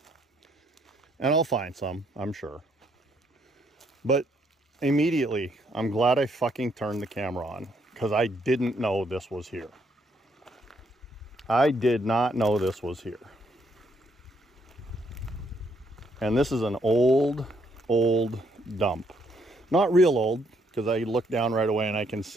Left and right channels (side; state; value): both; normal; correlation 0.72